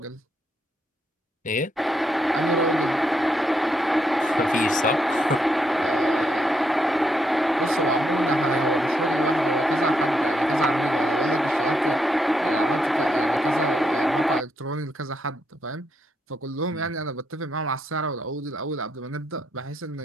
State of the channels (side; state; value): both; normal; correlation 0.78